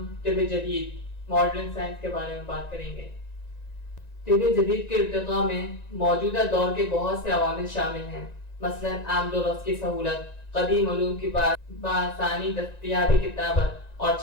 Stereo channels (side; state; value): right; late; 1.9 ms